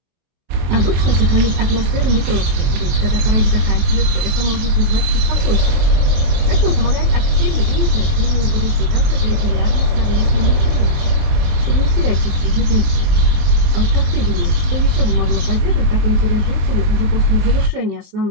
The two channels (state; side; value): late; left; 23 ms